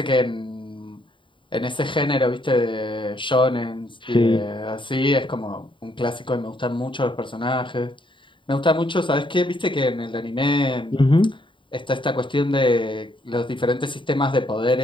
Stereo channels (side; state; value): right; late; 0.24 ms